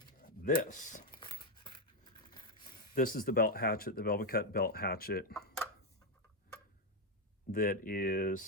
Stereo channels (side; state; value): both; normal; correlation 0.05